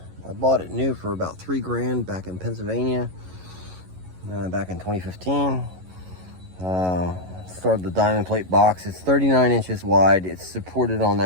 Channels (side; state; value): left; late; 11 ms